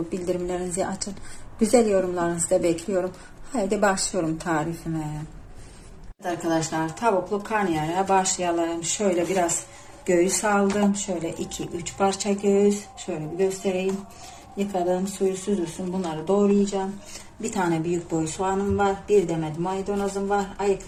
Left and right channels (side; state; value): both; identical; correlation 1.00